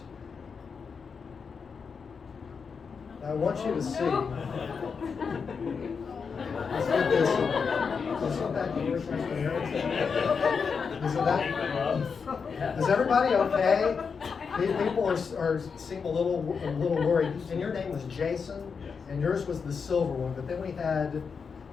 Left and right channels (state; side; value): quieter; right; 5.7 dB